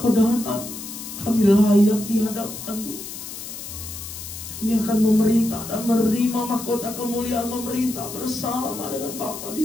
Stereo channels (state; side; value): noise; left; hiss, 10 dB below the sound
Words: datang, kami layak di hadapan-Mu. Kami akan memerintah dan menerima mahkota kemuliaan memerintah bersama dengan Bapa